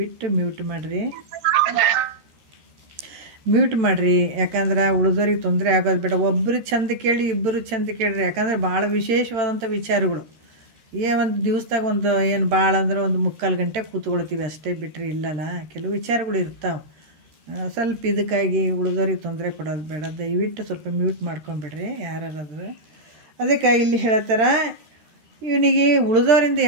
ಮ್ಯೂಟ್ ಮಾಡಿರಿ. ಯಾಕಂದ್ರೆ ಉಳಿದವ್ರಿಗೆ ತೊಂದರೆ ಆಗೋದು ಬೇಡ. ಒಬ್ಬರು ಚಂದ ಕೇಳಿ, ಇಬ್ಬರು ಚಂದ ಕೇಳ್ರಿ. ಯಾಕಂದರೆ ಭಾಳ ವಿಶೇಷವಾದಂಥ ವಿಚಾರಗಳು. ಒಂದು ದಿವಸದಾಗ ಏನು ಭಾಳ ಅಂದ್ರೆ 3/4 ಗಂಟೆ ಕೂತ್ಕೊಳ್ತೀವಿ ಅಷ್ಟೇ, ಬಿಟ್ಟರೆ ಇಲ್ಲಲ್ಲ, ಕೆಲವು ವಿಚಾರಗಳು ಇರ್ತಾವೆ. ಸ್ವಲ್ಪ ಇದಕ್ಕಾಗಿ ಉಳಿದವ್ರಿಗೆ ತೊಂದರೆ ಕೊಡೋದು ಬೇಡ. ದಯವಿಟ್ಟು ಸ್ವಲ್ಪ ಮ್ಯೂಟ್ ಮಾಡ್ಕೊಂಬಿಡ್ರಿ ಯಾರಾದ್ರೂ. ಅದಕ್ಕೆ ಇಲ್ಲಿ ಹೇಳ್ತಾರ, ಇವನಿಗೆ ಉಳಿದವರಿಂದ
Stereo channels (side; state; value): left; late; 13 ms